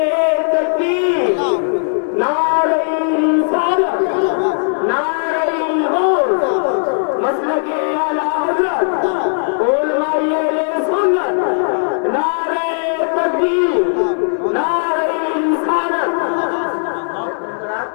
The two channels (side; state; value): right; silent; 59 dB below the other